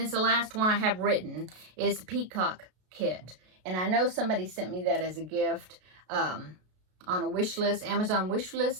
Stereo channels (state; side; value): late; left; 33 ms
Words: the last one I have written, is the Peacock kit. And I know somebody sent me that as a gift on a wish list, Amazon wish